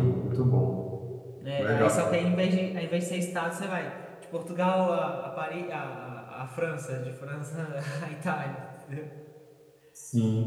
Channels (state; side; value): identical; both; correlation 1.00